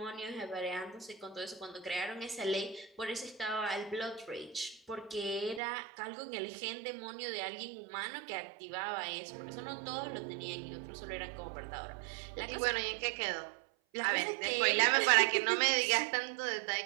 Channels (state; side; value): drops out; left; at 5.6 s